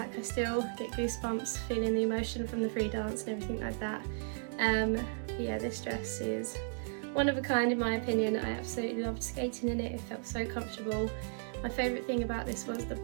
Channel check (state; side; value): silent; left; digital silence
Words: I still get goosebumps feeling the emotion from the free dance and everything like that. Yeah, this dress is one of a kind in my opinion. I absolutely loved skating in it, it felt so comfortable. My favourite thing about this was the